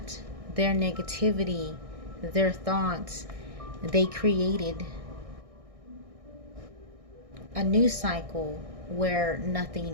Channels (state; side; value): late; left; 1.6 ms